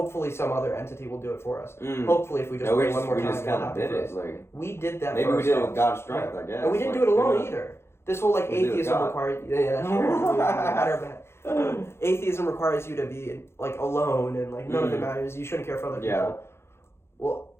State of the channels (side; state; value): right; late; 0.12 ms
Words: some other entity will do it for us. Hopefully if we just pray one more time, we just kind of did it. Like, we did that maybe for we did it with God's strength, I guess. And we didn't do it alone either. This whole like atheism requires atheism requires you to be like alone and like none of it matters. You shouldn't care for other people. Well,